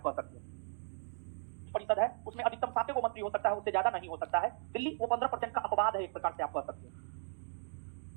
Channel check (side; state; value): left; silent; digital silence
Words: कह सकते हैं। परिषद है उसमें अधिकतम 7 को मंत्री हो सकता है, उससे ज्यादा नहीं हो सकता है। दिल्ली वो 15% का अपवाद है, एक प्रकार से आप कह सकते हैं।